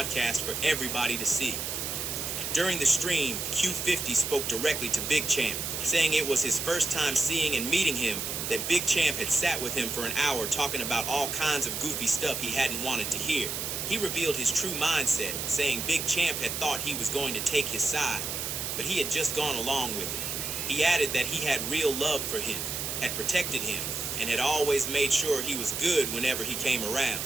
for everybody to see. During the stream, Q50 spoke directly to Big Champ, saying it was his first time seeing and meeting him, that Big Champ had sat with him for an hour talking about all kinds of goofy stuff he hadn't wanted to hear. He revealed his true mindset, saying Big Champ had thought he was going to take his side, but he had just gone along with it. He added that he had real love for him, had protected him, and had always made sure he was good whenever he came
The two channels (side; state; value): right; noise; hiss, 3 dB below the sound